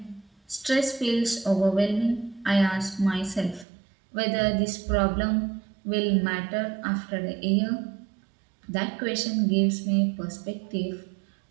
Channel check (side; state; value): left; drops out; at 3.7 s